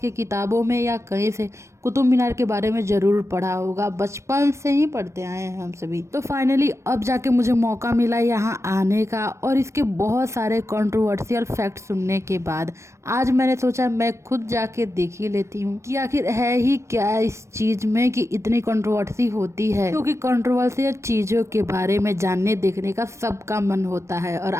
किताबों में या कहीं से कुतुब मीनार के बारे में ज़रूर पढ़ा होगा। बचपन से ही पढ़ते आए हैं हम सभी। तो फाइनली अब जाके मुझे मौका मिला यहाँ आने का और इसके बहुत सारे कंट्रोवर्शियल फैक्ट सुनने के बाद आज मैंने सोचा मैं खुद जाके देख ही लेती हूँ कि आखिर है ही क्या इस चीज़ में कि इतनी कंट्रोवर्सी होती है। क्योंकि कंट्रोवर्शियल चीज़ों के बारे में जानने देखने का सबका मन होता है और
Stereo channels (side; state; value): left; late; 0.13 ms